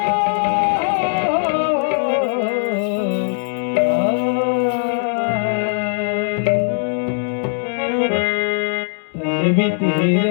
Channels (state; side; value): silent; right; digital silence